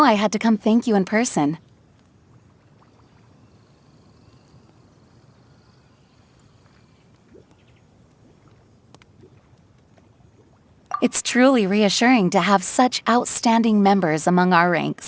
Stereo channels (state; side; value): identical; both; correlation 1.00